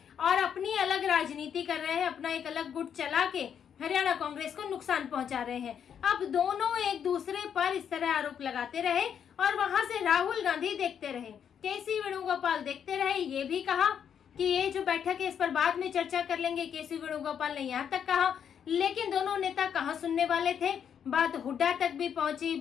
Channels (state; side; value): quieter; right; 8.2 dB